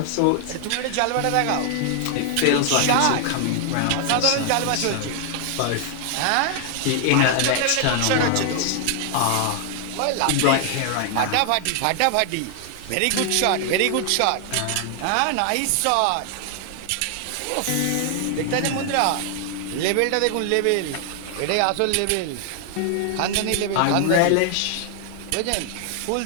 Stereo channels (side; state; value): both; different; correlation 0.00